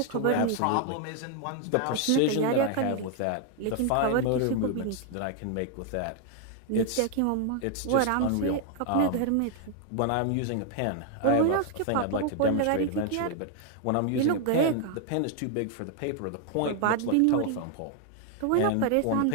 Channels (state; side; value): different; both; correlation 0.00